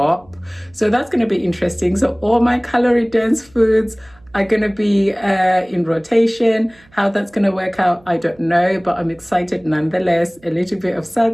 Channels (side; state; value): right; noise; hum, 29 dB below the sound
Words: So that's gonna be interesting. So all my calorie dense foods are gonna be in rotation. How that's gonna work out, I don't know, but I'm excited nonetheless. A little bit of